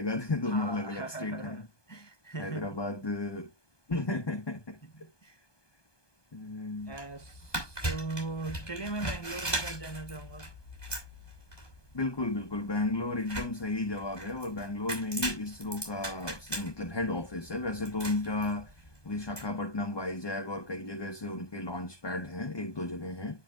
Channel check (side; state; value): right; late; 1.2 ms